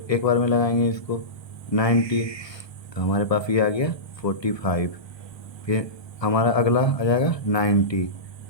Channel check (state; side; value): late; right; 1.3 ms